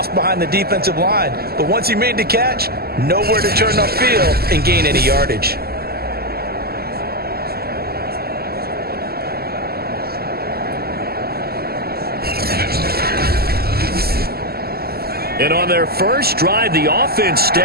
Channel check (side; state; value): left; late; 0.45 ms